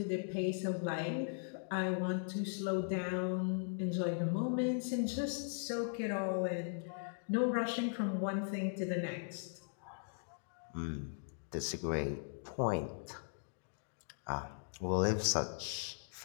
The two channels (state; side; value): silent; right; digital silence